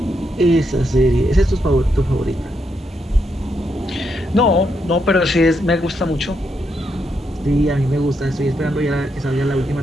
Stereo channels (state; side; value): normal; both; correlation 0.80